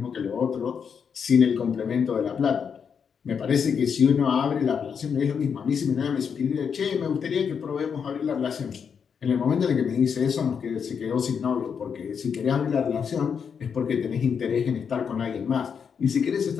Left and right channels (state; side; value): quieter; right; 6.8 dB